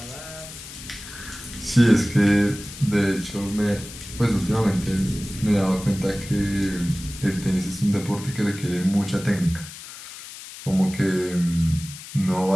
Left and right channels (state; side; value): noise; left; hiss, 14 dB below the sound